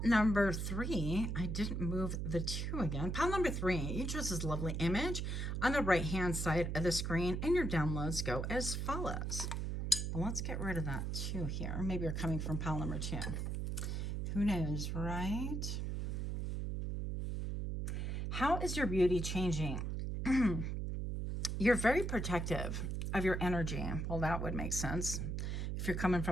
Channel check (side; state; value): right; noise; hum, 2 dB below the sound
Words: number 3, I didn't move the 2 again. Pile number 3, you chose this lovely image on the right hand side of the screen, and your downloads go as follows. Well, let's get rid of that 2 here. Maybe you're coming from pile number 2. Who knows, right? How is your beauty changing? You're very protective of your energy. Well, that would make sense if you're coming